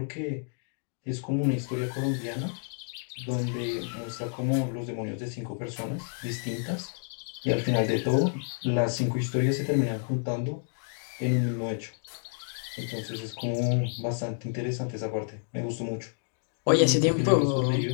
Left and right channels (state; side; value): silent; right; digital silence